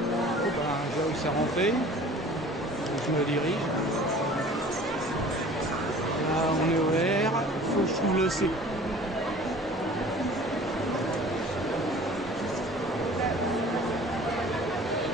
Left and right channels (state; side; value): normal; both; correlation 0.46